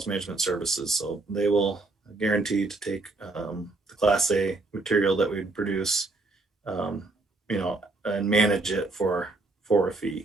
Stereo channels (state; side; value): quieter; left; 3.2 dB